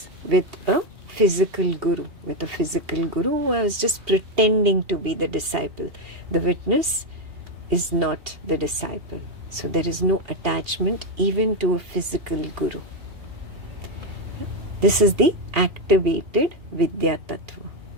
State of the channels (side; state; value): left; late; 2.8 ms